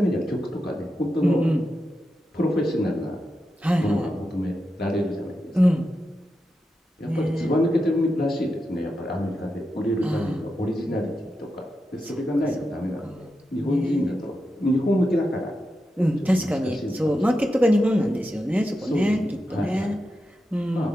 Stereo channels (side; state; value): both; normal; correlation 0.88